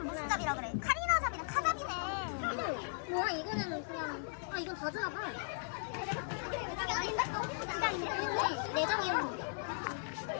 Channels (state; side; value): silent; right; digital silence